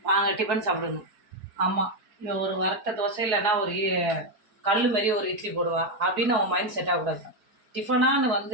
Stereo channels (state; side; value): late; left; 4.6 ms